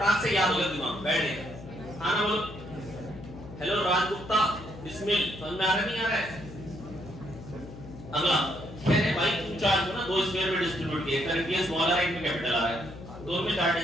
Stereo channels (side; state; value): left; noise; hum, 14 dB below the sound